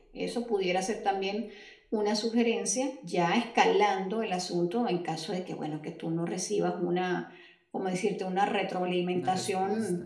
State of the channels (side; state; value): both; identical; correlation 1.00